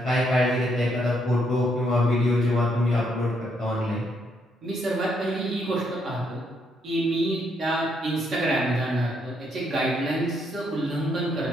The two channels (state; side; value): normal; both; correlation 0.74